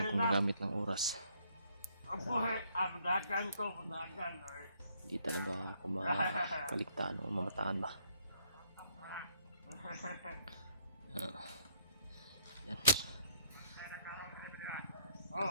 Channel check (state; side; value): inverted; both; correlation -0.68